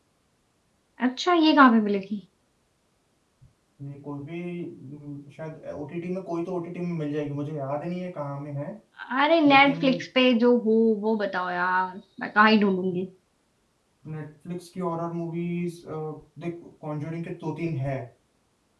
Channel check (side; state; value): both; identical; correlation 1.00